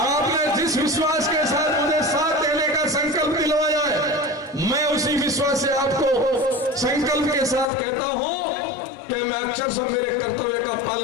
जिस विश्वास के साथ मुझे साथ देने का संकल्प दिलवाया है, मैं उसी विश्वास से आपको संकल्प के साथ कहता हूं कि मैं अक्षर से मेरे कर्तव्य का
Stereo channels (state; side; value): drops out; right; at 7.7 s